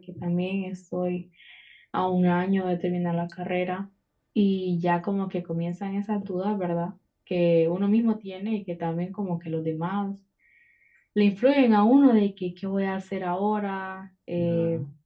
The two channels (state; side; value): identical; both; correlation 1.00